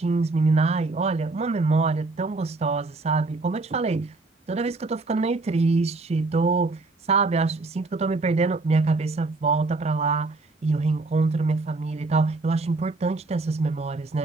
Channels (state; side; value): quieter; left; 3.4 dB